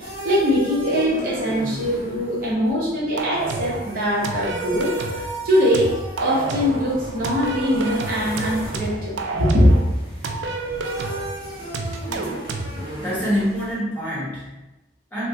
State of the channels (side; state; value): both; normal; correlation 0.51